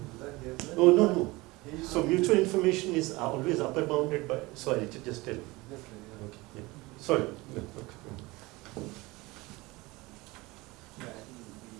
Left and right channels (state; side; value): quieter; left; 22.1 dB